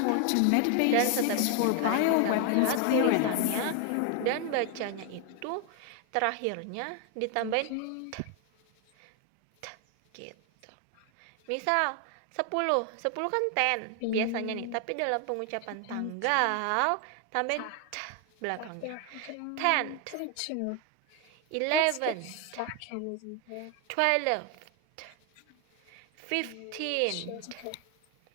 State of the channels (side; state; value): both; different; correlation 0.01